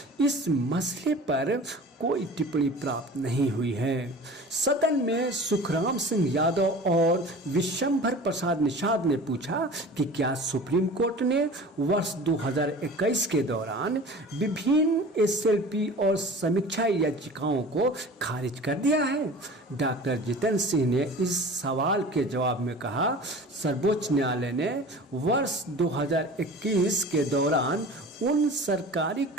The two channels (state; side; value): normal; both; correlation 0.39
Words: इस मसले पर कोई टिप्पणी प्राप्त नहीं हुई है। सदन में सुखराम सिंह यादव और विशंभर प्रसाद निषाद ने पूछा कि क्या सुप्रीम कोर्ट ने वर्ष 2021 के दौरान विभिन्न एसएलपी और समीक्षा याचिकाओं को खारिज कर दिया है। डॉक्टर जितेंद्र सिंह ने इस सवाल के जवाब में कहा, सर्वोच्च न्यायालय ने वर्ष 2021 के दौरान उन सरकारी